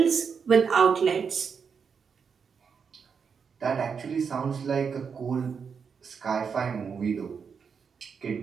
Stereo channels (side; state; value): left; quieter; 6.2 dB